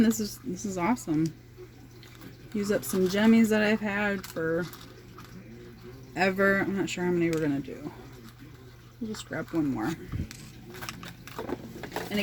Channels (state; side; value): identical; both; correlation 1.00